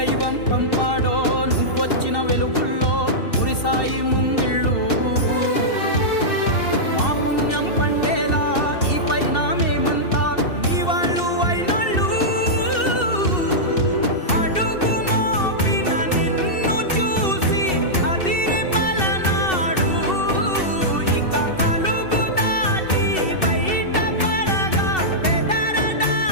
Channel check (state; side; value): late; right; 2.7 ms